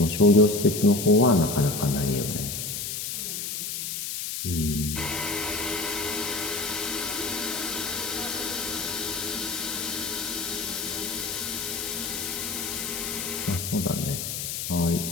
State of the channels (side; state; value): left; noise; hiss, 4 dB below the sound